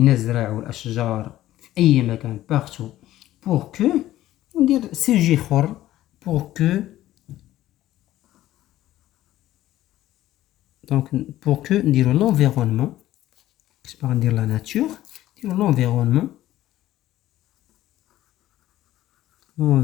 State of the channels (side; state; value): right; quieter; 14.4 dB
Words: الأشجار في أي مكان partout pour que ندير سوجي اخر pour que. donc pour que نديرو l'environnement. كيش باغي ندير la nature نديرو l'environnement